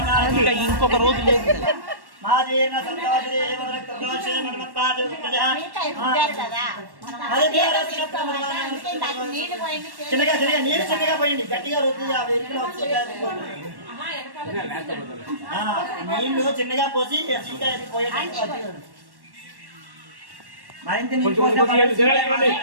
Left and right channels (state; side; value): late; left; 1.1 ms